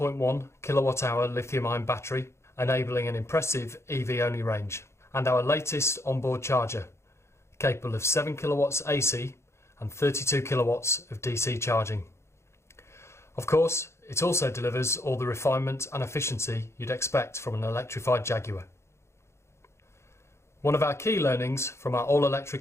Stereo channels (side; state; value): right; late; 0.13 ms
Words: kilowatt-hour lithium-ion battery, enabling an impressive EV-only range. And our latest onboard charger, capable of 7 kilowatts AC and 32 kilowatts of DC charging. Of course, it also delivers all the refinement and efficiency you'd expect from an electrified Jaguar. One of our key learnings from our